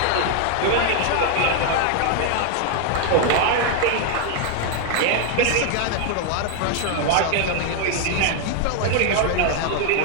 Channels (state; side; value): different; both; correlation 0.00